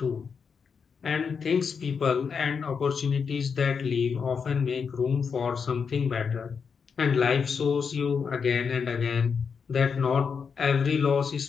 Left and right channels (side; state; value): right; quieter; 6.0 dB